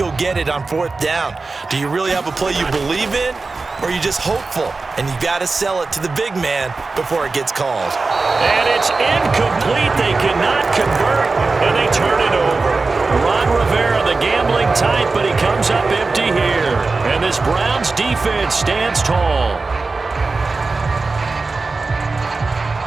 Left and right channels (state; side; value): quieter; left; 3.9 dB